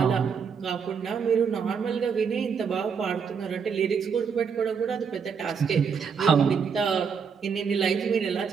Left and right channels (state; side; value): quieter; left; 6.3 dB